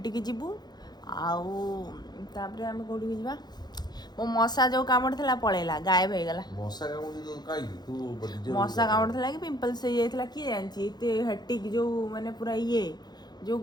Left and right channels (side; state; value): right; late; 0.20 ms